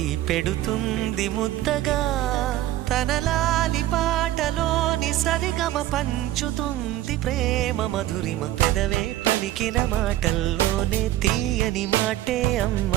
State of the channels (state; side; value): quieter; left; 14.3 dB